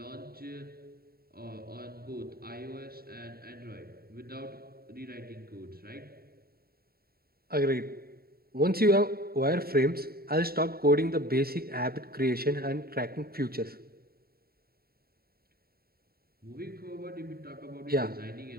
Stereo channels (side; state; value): left; late; 0.44 ms